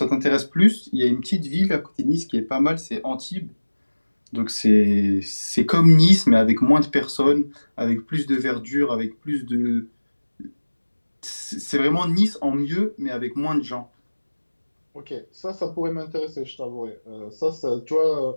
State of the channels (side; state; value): both; inverted; correlation -1.00